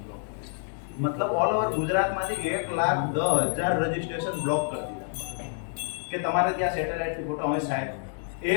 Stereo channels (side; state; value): right; silent; digital silence